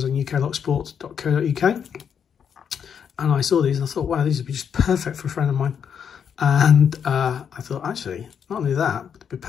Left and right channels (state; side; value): quieter; right; 7.6 dB